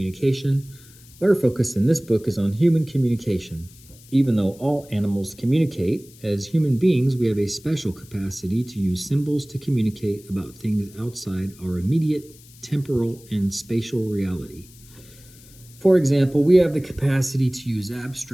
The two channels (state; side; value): noise; left; hiss, 24 dB below the sound